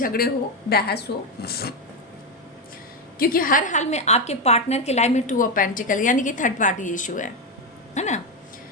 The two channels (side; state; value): both; normal; correlation 0.09